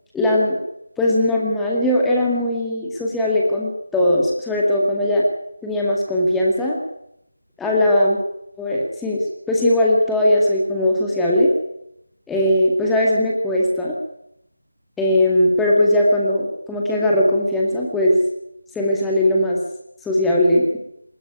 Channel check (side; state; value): both; inverted; correlation -0.75